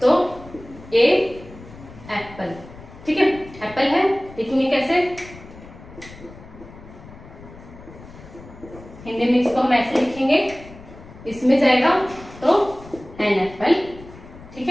तो ए एप्पल। ठीक है, एप्पल है, लिखेंगे कैसे, हिंदी में इसको हम ऐसे लिखेंगे, इसमें जाएगा तो एन एप्पल। ठीक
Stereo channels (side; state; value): left; noise; rumble, 18 dB below the sound